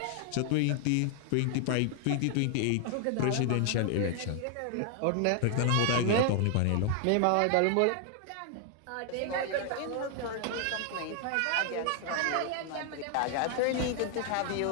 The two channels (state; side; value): different; both; correlation 0.00